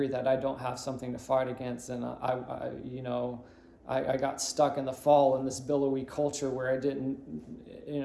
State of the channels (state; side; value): identical; both; correlation 1.00